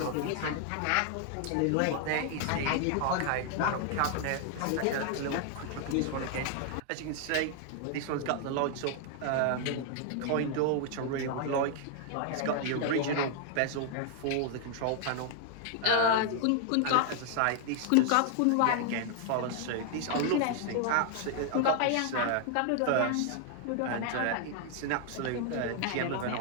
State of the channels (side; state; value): both; different; correlation 0.00